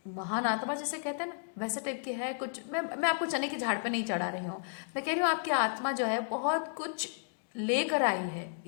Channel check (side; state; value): right; silent; digital silence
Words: महान आत्मा जिसे कहते हैं ना, वैसे टाइप की है कुछ। मैं आपको चने के झाड़ पे नहीं चढ़ा रही हूँ, मैं कह रही हूँ आपकी आत्मा जो है बहुत कुछ लेकर आई है